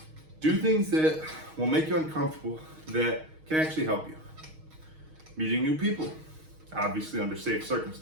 Do things that will make you uncomfortable that can actually help you. Meeting new people, obviously under safe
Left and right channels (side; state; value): left; late; 6.4 ms